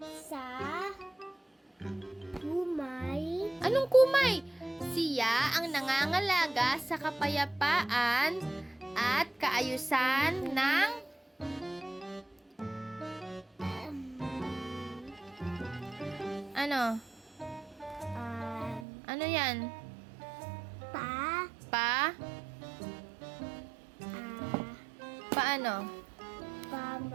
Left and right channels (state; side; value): drops out; left; at 18.9 s